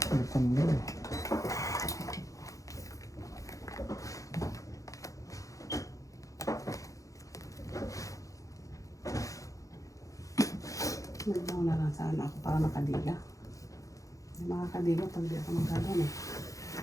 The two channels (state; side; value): late; right; 0.16 ms